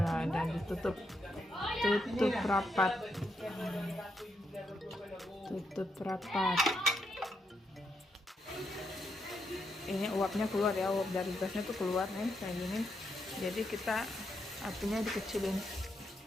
dan ditutup rapat. Tutup rapat. Ini uapnya keluar ya, uap dari gasnya tuh keluar nih kayak gini. Jadi kita apinya dikecilin,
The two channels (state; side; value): normal; both; correlation 0.81